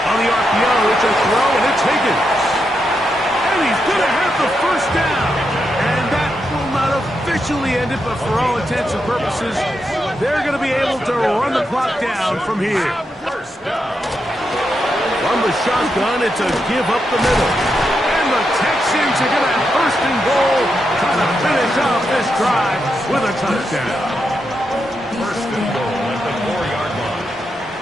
the RPO, it's a throw, and it's Higgins. And he's going to have the first down. And that will not officially end it, but for all intents and purposes, they're going to be able to run the clock down from here. From the shotgun, it's a give up the middle. And the Texans are going to have first and goal, trying to finish off this drive with a touchdown. First and goal at the 4-yard line.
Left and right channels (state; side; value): normal; both; correlation 0.84